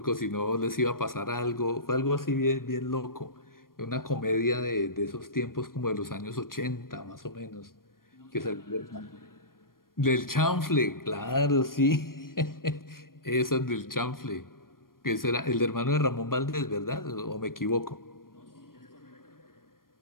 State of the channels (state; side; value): late; right; 0.91 ms